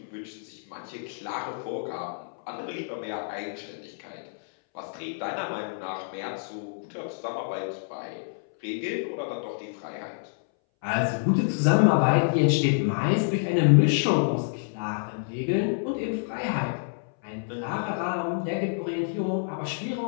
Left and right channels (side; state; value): right; silent; 59 dB below the other